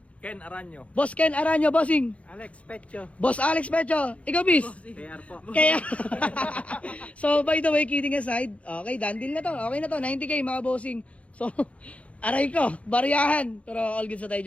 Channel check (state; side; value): late; right; 0.064 ms